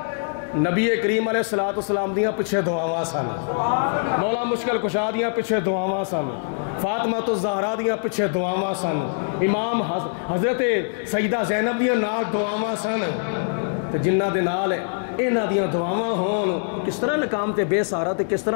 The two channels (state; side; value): silent; right; 63 dB below the other